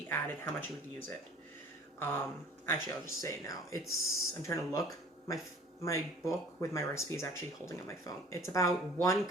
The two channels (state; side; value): normal; both; correlation 0.49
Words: added, how much you would use it. Actually, I'll just say it now. I'm trying to look. My book with my recipe is actually holding on my phone. It's about 1